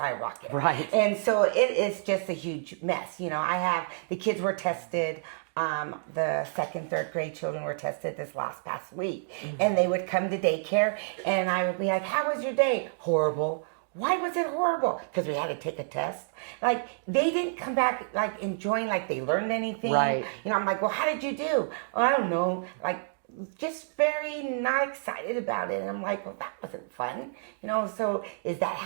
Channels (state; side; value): silent; left; digital silence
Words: Right. And so it is just a huge mess. The kids were tested. The second, third grade children were tested this past week. Mm-hmm. And they would come to daycare and I would be like, how was your day? Horrible. Why was it horrible? Because we had to take a test. Like, they didn't come back, like, enjoying, like, they learned anything. Right. I'm like, well, how did you do? Oh, I don't know. Like, just very not excited about it. And I'm like, well, that wasn't fun. So is that